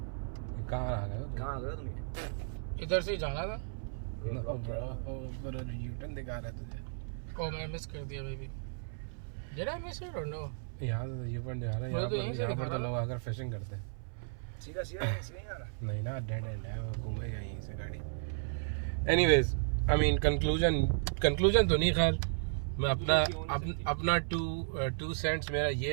कहाँ आ गए? कहाँ आ गए तुम? इधर से ही जाना था। यूटर्न दिखा रहा तुझे। ओ मैं मिस कर दिया baby. Did I miss it or no? यहाँ से यूटर्न दिखा रहा है। यहाँ पर तो लोग आकर फिशिंग करते हैं। सीधा सीधा नहीं जाना। नहीं ना, डेड एंड है, वो घूमेगा यहीं से गाड़ी। एनीवेज, आई मीन कंक्लूजन तो नहीं, खैर मैं अपना टू सेंट्स मेरा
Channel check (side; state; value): left; silent; 55 dB below the other